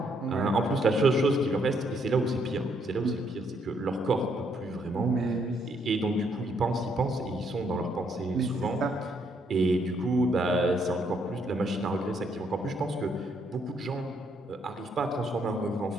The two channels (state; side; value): normal; both; correlation 0.72